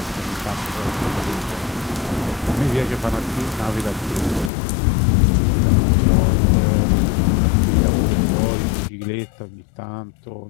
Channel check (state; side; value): drops out; right; at 4.5 s